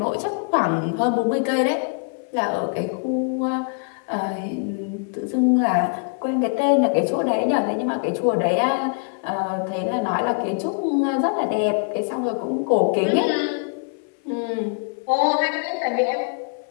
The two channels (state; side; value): quieter; right; 38.4 dB